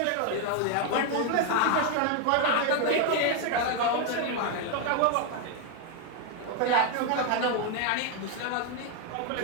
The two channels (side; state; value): both; different; correlation 0.01